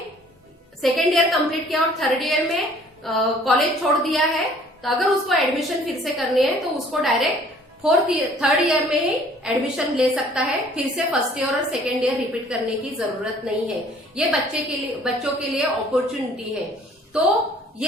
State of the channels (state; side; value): normal; both; correlation 0.56